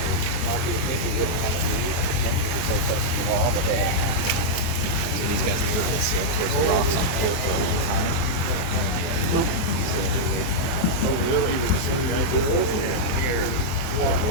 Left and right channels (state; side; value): late; right; 23 ms